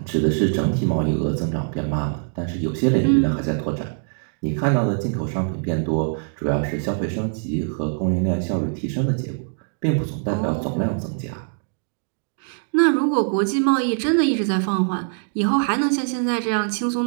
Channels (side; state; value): left; silent; digital silence